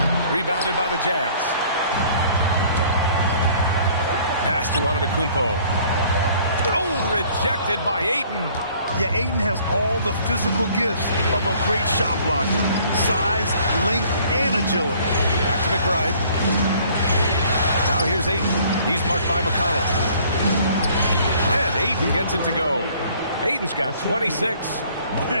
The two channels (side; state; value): both; inverted; correlation -0.57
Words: Rebounded by the Jazz. Pass to Antetokounmpo. Oh, rejected by Ayton. Yeah, Ayton has all the physical gifts of a great shot blocker. Size, length, and agility. Back to McBride. Now here's Ayton. He's marked by McConnell. And Ayton gets it to go. Ayton's got 26.